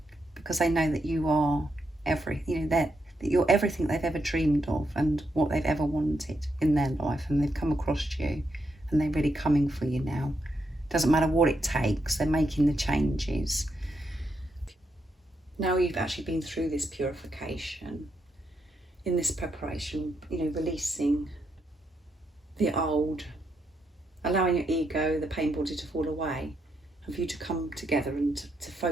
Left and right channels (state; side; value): normal; both; correlation 0.81